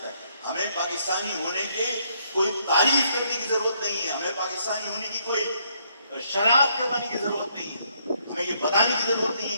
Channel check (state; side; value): inverted; both; correlation -0.71